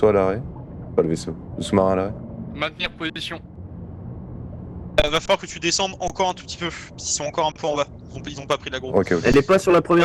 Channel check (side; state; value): both; identical; correlation 1.00